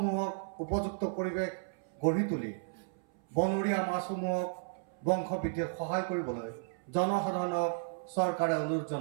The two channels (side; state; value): left; silent; 55 dB below the other